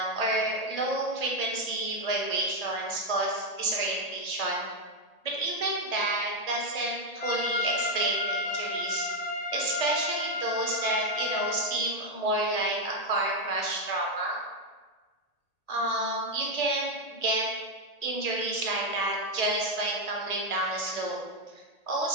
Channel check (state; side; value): late; right; 1.8 ms